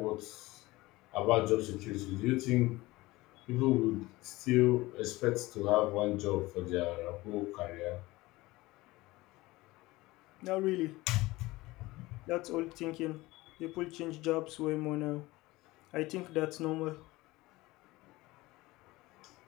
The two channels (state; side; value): quieter; right; 20.0 dB